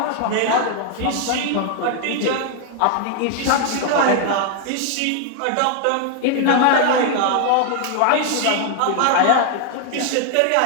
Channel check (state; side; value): different; both; correlation 0.00